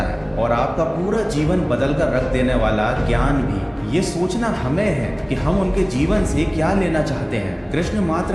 है और आपका पूरा जीवन बदल कर रख देने वाला ज्ञान भी। ये सोचना हमें है कि हम उनके जीवन से क्या लेना चाहते हैं। कृष्ण मात्र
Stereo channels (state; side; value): identical; both; correlation 1.00